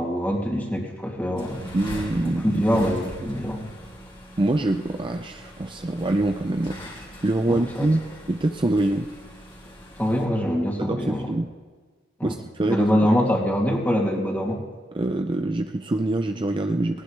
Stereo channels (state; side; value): normal; both; correlation 0.85